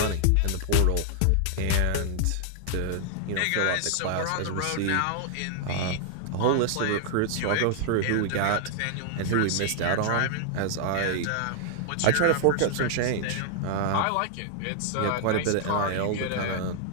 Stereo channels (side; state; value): both; different; correlation 0.00